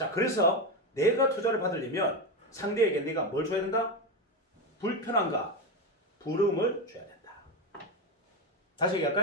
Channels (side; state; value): both; normal; correlation 0.13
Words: 그래서 내가 투자를 받으려면 상대에게 내가 뭘 줘야 된다? 불편함과 부러움을 줘야 된다. 다시